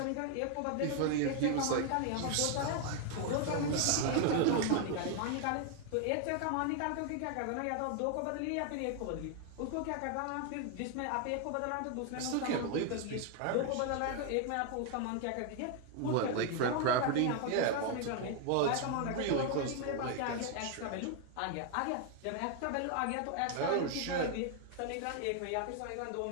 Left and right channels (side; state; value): both; different; correlation 0.00